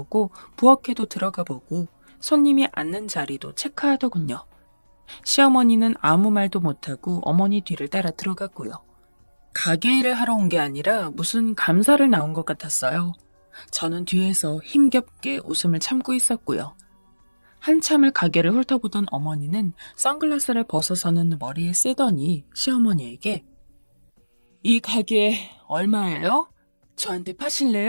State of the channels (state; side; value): inverted; both; correlation -1.00